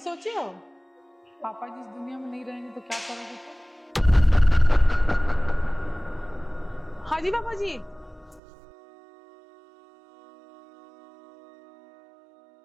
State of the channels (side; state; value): left; drops out; at 8.4 s